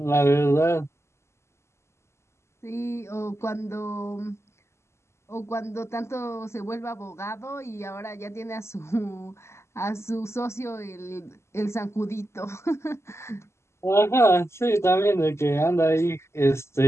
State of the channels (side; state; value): right; late; 0.13 ms